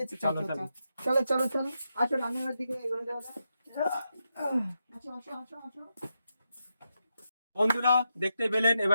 চলো চলো চলো চলো চলো, আসো রান্নাঘর দিকে এগোনো যাওয়া যাক। আসো আসো আসো আসো। বন্ধুরা দেখতে পেলেন,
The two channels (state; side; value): inverted; both; correlation -0.85